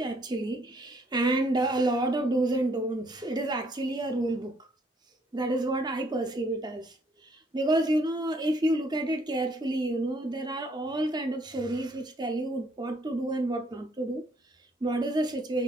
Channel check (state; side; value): normal; both; correlation 0.67